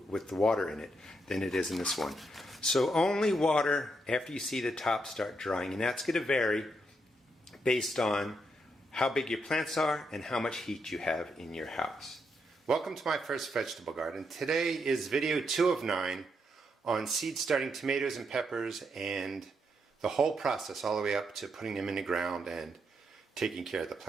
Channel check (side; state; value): both; normal; correlation 0.79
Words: the water in it than it is in this one. So only water after you see the top start drying, and that's going to vary based on how big your plants are and how much heat you have in your house. Welcome to my first vegetable garden. Today is video 2 of 9 on seed starting tomatoes and peppers and the whole process all the way up to putting them in the ground and taking care of the